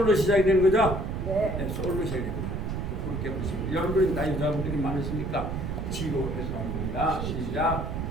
시작이 되는 거죠? 네, 솔로 시작이 됩니다. 그렇게 보시면 여러분들이 나 여자분들이 많으시니까 지로 해서 합니다. 시작.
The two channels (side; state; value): right; noise; rumble, 3 dB below the sound